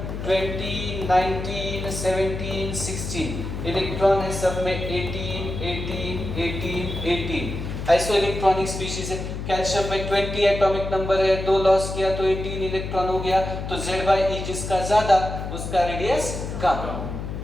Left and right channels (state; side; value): noise; left; hum, 6 dB below the sound